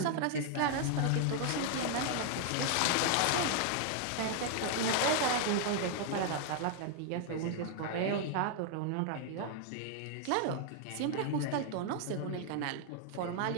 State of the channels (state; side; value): different; both; correlation 0.00